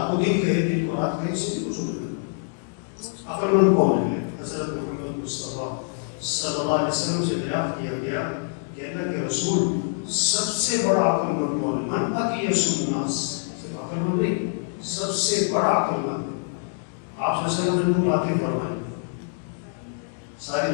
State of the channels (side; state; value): right; silent; 62 dB below the other